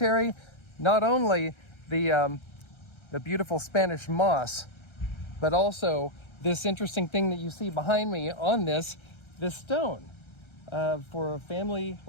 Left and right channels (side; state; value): right; late; 1.3 ms